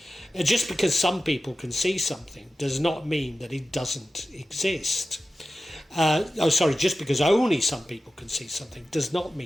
Just because some people can see something does not mean that it doesn't exist. Just because only some people can see something does not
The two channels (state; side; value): normal; both; correlation 0.94